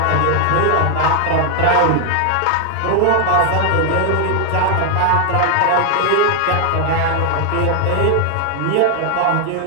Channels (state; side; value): different; both; correlation 0.00